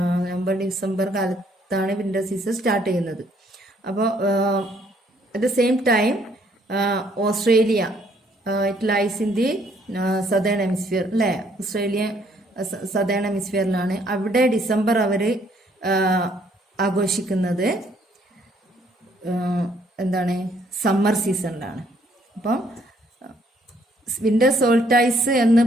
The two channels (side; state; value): both; normal; correlation 0.66